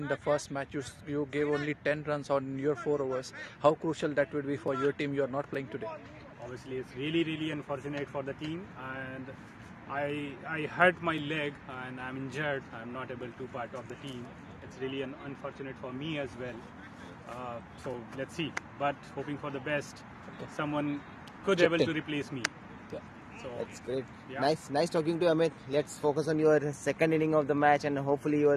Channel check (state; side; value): identical; both; correlation 1.00